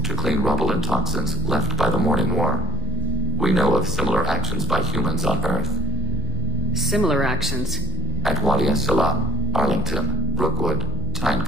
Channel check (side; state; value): both; normal; correlation 0.43